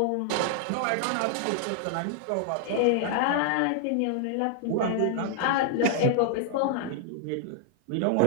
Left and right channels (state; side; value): different; both; correlation -0.01